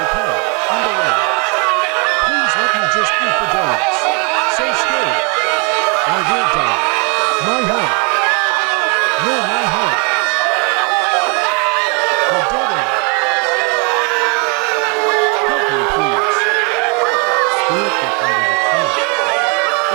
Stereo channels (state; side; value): quieter; left; 34.0 dB